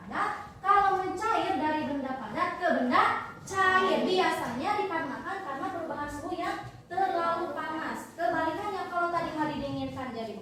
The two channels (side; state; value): both; identical; correlation 1.00